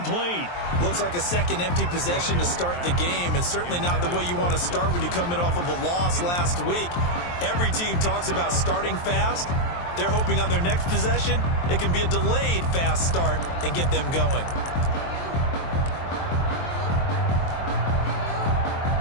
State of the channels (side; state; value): right; late; 23 ms